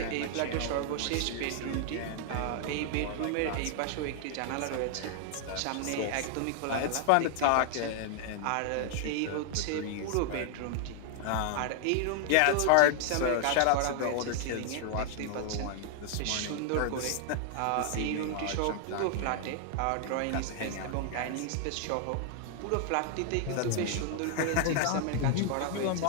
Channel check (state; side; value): different; both; correlation 0.00